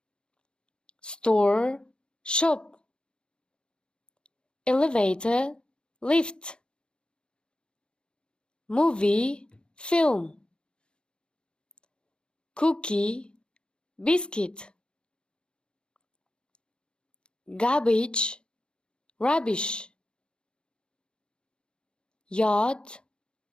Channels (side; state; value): right; late; 0.052 ms